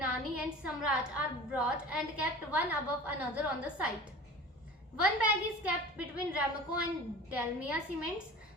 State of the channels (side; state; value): both; normal; correlation 0.39